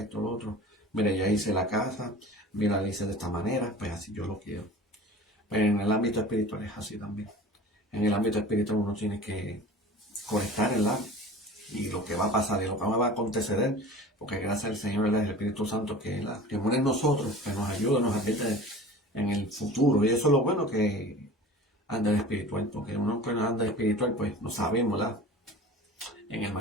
lo otro, mira, ya hice la casa, mira, la hice de esta manera, pues así yo lo quiero. Pero en el ámbito espiritual es así también. En el ámbito espiritual uno tiene que conectar el alma y lo que va a pasar y lo que va a acontecer, porque gracias al Señor, el Espíritu Santo que muere en nosotros, que nos ayuda, nos advierte en el futuro. Y eso es lo bueno que anda espiritual, porque uno que no anda espiritual, pues no sabemos, ¿verdad? En el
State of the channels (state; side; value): normal; both; correlation 0.39